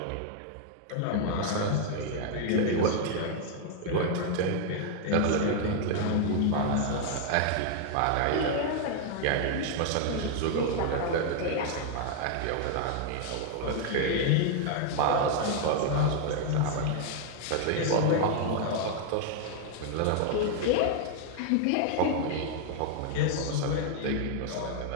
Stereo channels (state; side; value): different; both; correlation 0.00